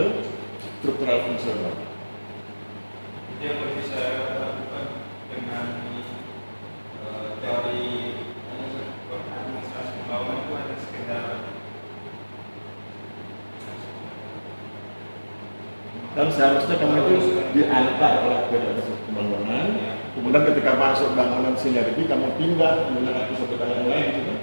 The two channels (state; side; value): inverted; both; correlation -1.00